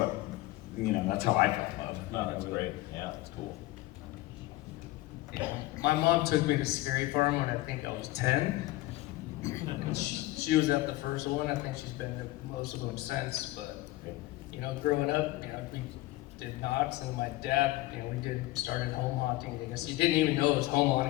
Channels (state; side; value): quieter; right; 18.0 dB